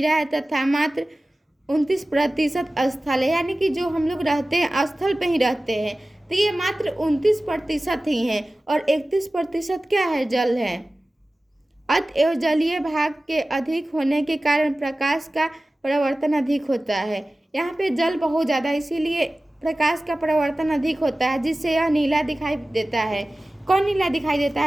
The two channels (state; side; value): normal; both; correlation 0.96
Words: है तथा मात्र 29% स्थल है, यानी कि जो हम लोग रहते हैं स्थल पे ही रहते हैं, तो ये मात्र 29% ही है, और 31% क्या है? जल है। अतएव जलीय भाग के अधिक होने के कारण प्रकाश का परावर्तन अधिक होता है। यहाँ पे जल बहुत ज़्यादा, इसीलिए प्रकाश का परावर्तन अधिक होता है, जिससे यह नीला दिखाई देता है। कौन नीला दिखाई देता